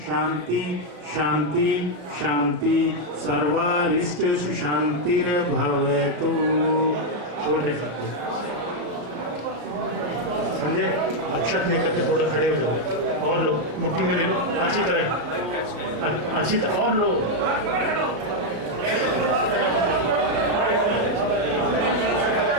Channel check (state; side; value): late; left; 34 ms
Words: शांति शांति शांति सर्वारिष्ट सुशांतिर्भवतु। छोड़ दे सबको। संजय अक्षत लेकर के थोड़ा खड़े हो जाओ और लो मुट्ठी में ले लो अच्छी तरह और लो